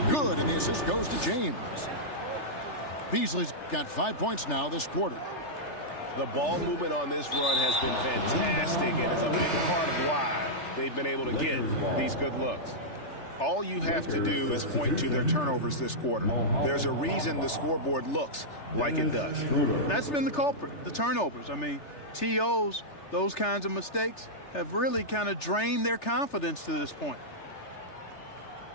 Good, and the assist goes to James. Beasley's got 5 points now this quarter. The ball movement on this run has been fantastic and is a big part of why they've been able to get these good looks. All you have to do is point to their turnovers this quarter. There's a reason the scoreboard looks like it does. That's been the culprit, the turnovers. I mean, TOs, those kinds of mistakes have really kind of drained their confidence to this point.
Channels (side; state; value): right; late; 3.3 ms